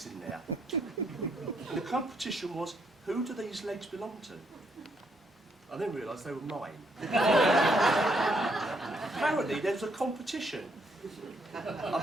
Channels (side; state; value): both; normal; correlation 0.73